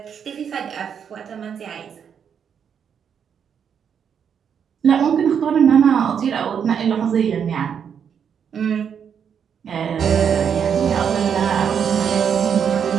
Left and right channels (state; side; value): quieter; left; 7.6 dB